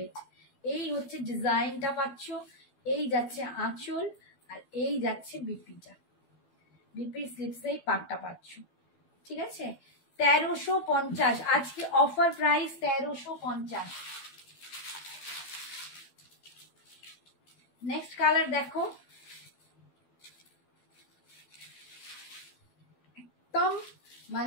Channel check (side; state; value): right; late; 12 ms